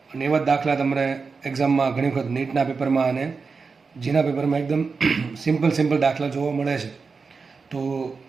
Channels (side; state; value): left; quieter; 4.8 dB